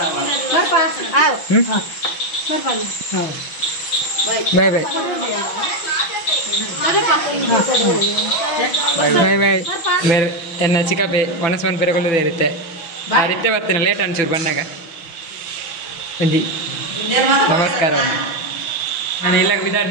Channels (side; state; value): right; late; 6.0 ms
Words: ಬಾಯ್ ಬಾಯ್ ಬಾಯ್ ಬಾಯ್ ಬೇರೆ ಎನ್ನ ಚಿಕ್ಕಪ್ಪೆ ಒಣಸ್ಮನ್ ಪೆರಗೊಳ್ಳೋದೇ ಇರುತ್ತೆ ಆ ರೀತಿ ಬರ್ತೀನಿ ಲೇಟ್ ಅನ್ಸೂರು ಬಂದಾಗ ಒಂಜಿ ನಮಸ್ಕಾರ ನಾನು ಇಲ್ಲಾಗ